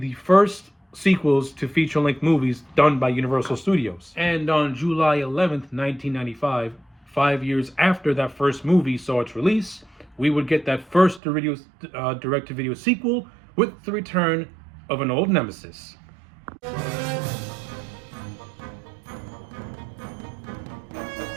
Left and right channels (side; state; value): left; drops out; at 11.2 s